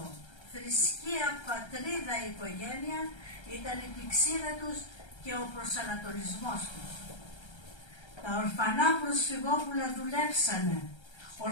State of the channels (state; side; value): late; right; 1.3 ms